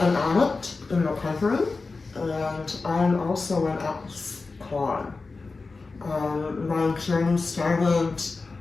addict in recovery, and I'm also an ex-con. My journey started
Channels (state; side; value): quieter; right; 3.9 dB